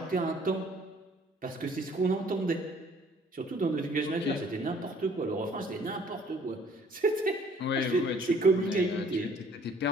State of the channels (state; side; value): normal; both; correlation 0.58